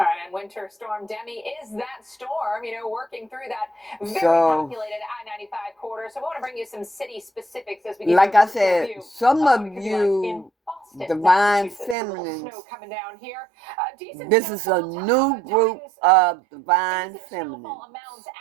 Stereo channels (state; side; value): drops out; left; at 12.0 s